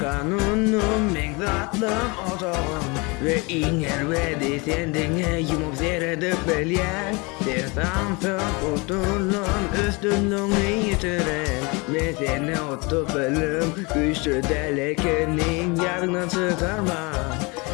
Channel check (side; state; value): right; quieter; 27.9 dB